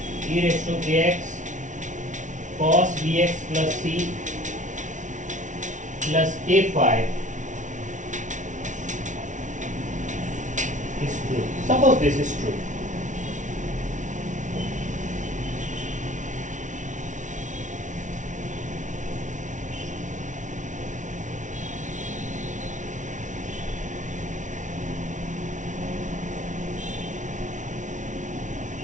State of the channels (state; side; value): late; left; 0.37 ms